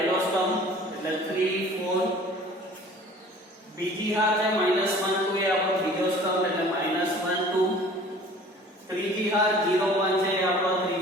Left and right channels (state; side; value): normal; both; correlation 0.48